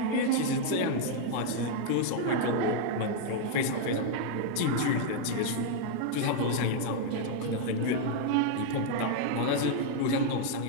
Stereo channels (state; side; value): different; both; correlation 0.00